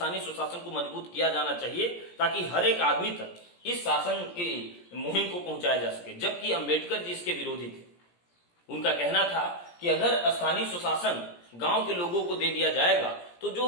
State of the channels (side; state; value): right; late; 17 ms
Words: स्वशासन को मजबूत किया जाना चाहिए ताकि हर एक आदमी तक इस शासन की मुहिम को पहुंचाया जा सके, जबकि अंबेडकर जी इसके विरोधी थे। उनका कहना था कि अगर स्थानीय स्वशासन गांव के लोगों को दे दिया जाएगा तो